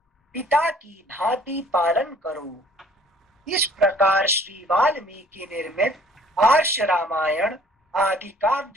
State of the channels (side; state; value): both; normal; correlation 0.56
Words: पिता की भांति पालन करो। इस प्रकार श्री वाल्मीकि निर्मित आर्ष रामायण आदि